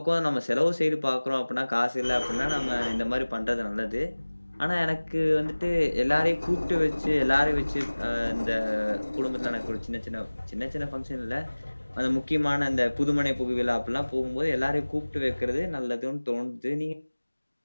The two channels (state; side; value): inverted; both; correlation -1.00